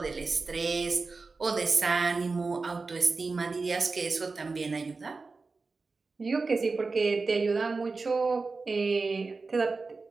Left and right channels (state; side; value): quieter; left; 4.0 dB